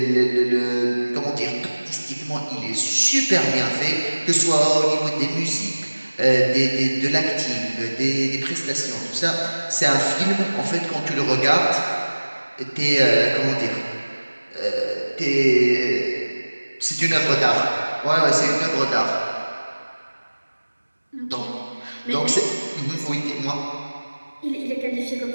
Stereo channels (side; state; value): both; inverted; correlation -1.00